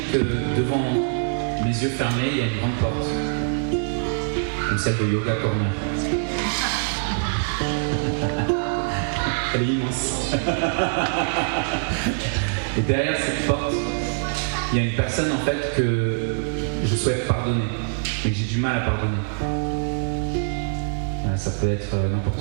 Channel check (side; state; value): left; silent; digital silence